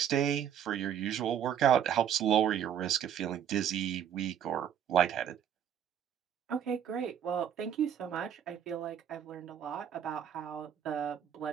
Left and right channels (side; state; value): left; quieter; 9.1 dB